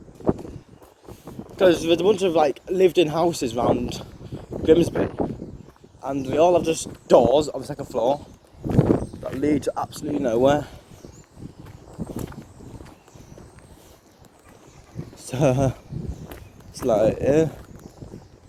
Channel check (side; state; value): both; identical; correlation 1.00